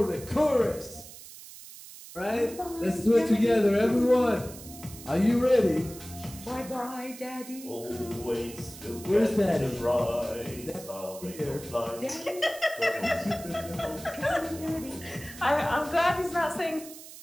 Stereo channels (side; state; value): right; noise; hiss, 16 dB below the sound